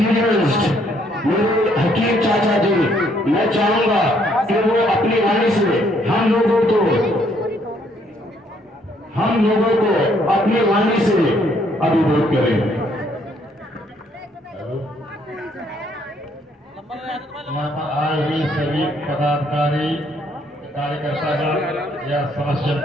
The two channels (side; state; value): both; normal; correlation 0.68